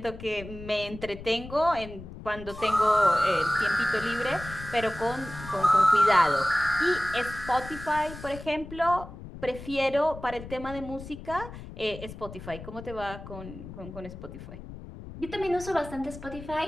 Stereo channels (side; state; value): left; noise; rumble, 13 dB below the sound